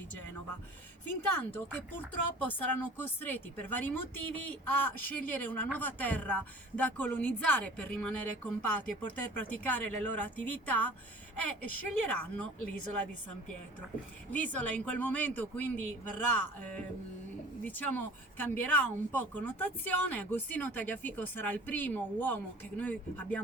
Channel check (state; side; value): normal; both; correlation 0.45